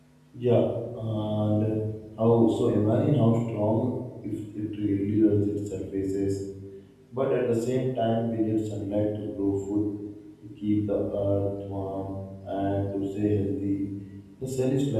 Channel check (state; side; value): identical; both; correlation 1.00